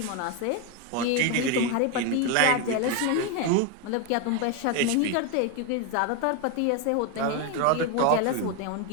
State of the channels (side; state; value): both; different; correlation 0.02